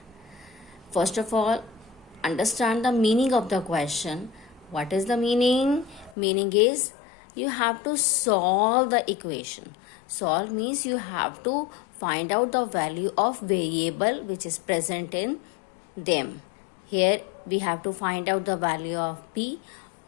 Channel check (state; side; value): drops out; right; at 6.2 s